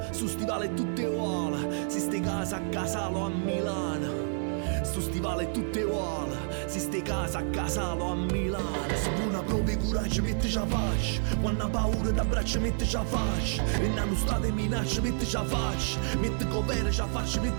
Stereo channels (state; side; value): silent; left; 58 dB below the other